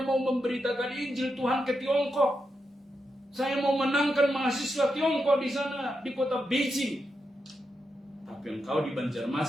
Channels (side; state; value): both; normal; correlation 0.86